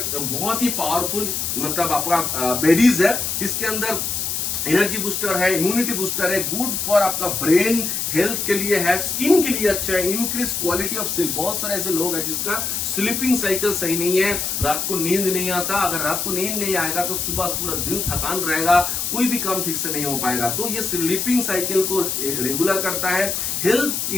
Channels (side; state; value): left; noise; hiss, 1 dB below the sound